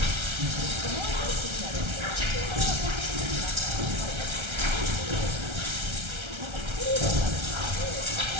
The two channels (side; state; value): left; late; 1.3 ms